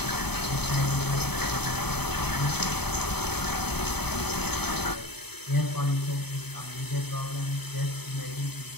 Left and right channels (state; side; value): late; right; 0.98 ms